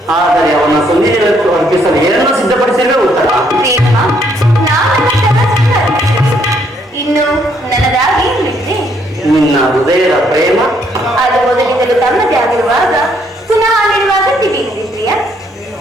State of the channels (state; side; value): normal; both; correlation 0.70